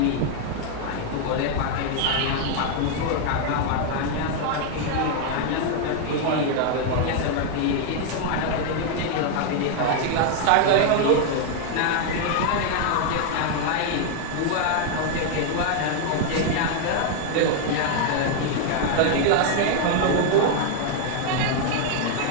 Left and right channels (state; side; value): different; both; correlation 0.00